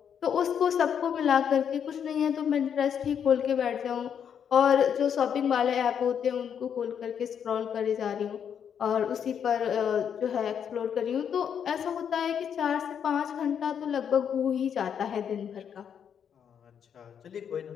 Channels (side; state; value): right; quieter; 8.1 dB